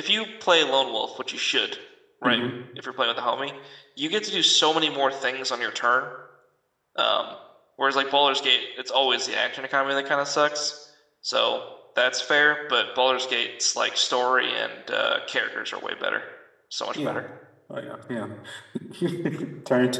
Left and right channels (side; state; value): both; identical; correlation 1.00